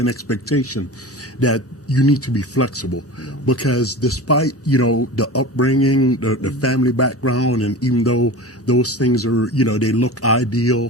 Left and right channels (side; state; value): both; normal; correlation 0.32